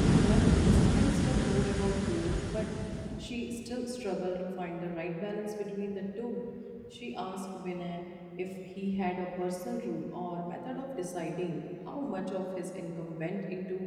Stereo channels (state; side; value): identical; both; correlation 1.00